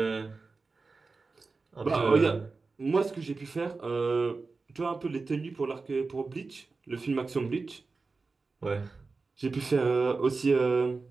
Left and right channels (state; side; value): quieter; left; 4.1 dB